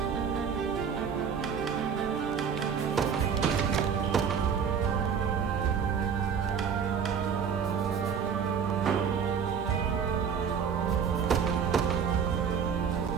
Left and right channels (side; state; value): left; quieter; 6.9 dB